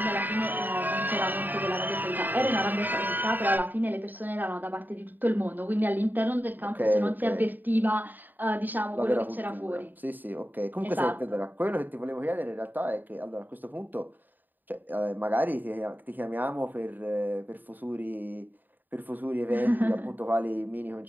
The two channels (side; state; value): left; late; 0.089 ms